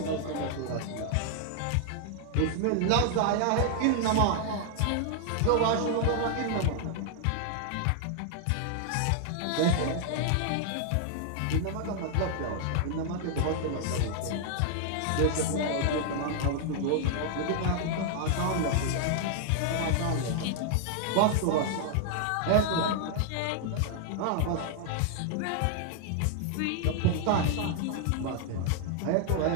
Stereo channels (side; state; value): both; different; correlation 0.00